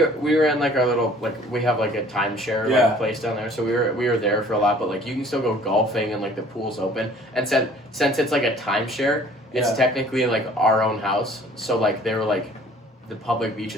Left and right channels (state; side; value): normal; both; correlation 0.53